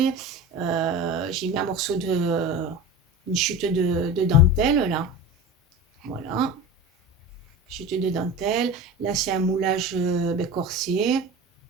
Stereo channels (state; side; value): normal; both; correlation 0.30